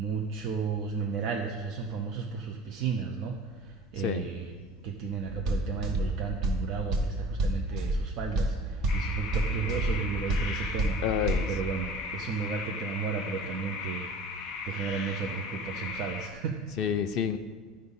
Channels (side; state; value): both; normal; correlation 0.41